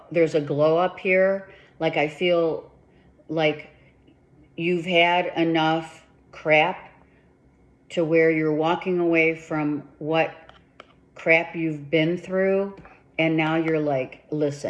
there's a glow up here. Like I feel like you've had enough crap to where you're walking away from what crap you've been through, and now you're like,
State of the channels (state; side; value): identical; both; correlation 1.00